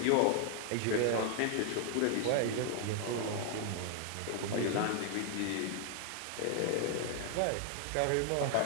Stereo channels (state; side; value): different; both; correlation 0.00